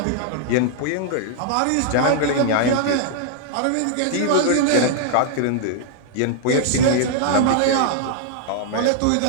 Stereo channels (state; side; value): different; both; correlation -0.01